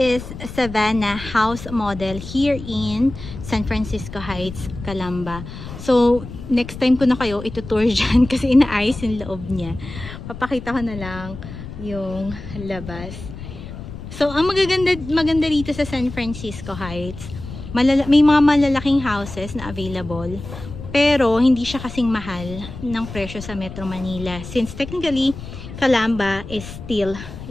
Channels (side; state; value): left; noise; rumble, 12 dB below the sound